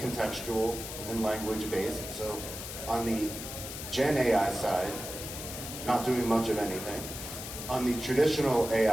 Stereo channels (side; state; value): left; noise; hiss, 8 dB below the sound